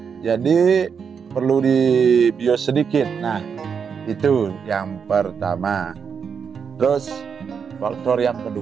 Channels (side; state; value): left; quieter; 6.6 dB